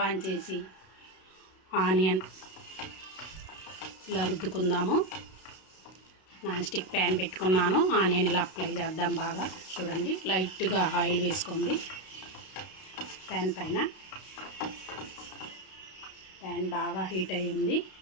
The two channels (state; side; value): late; right; 32 ms